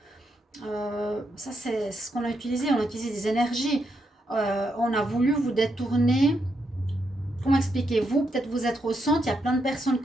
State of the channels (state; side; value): normal; both; correlation 0.80